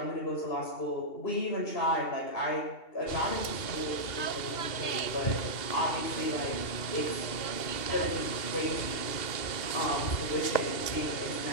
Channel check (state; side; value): late; right; 2.7 ms